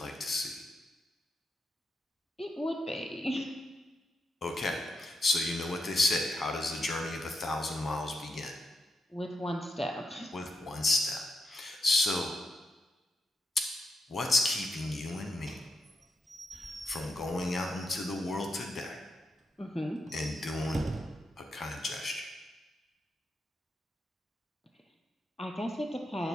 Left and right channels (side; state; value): both; normal; correlation 0.83